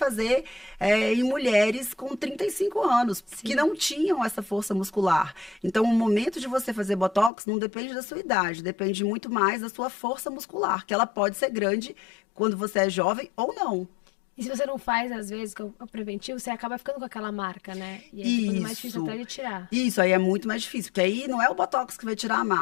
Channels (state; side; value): drops out; right; at 7.3 s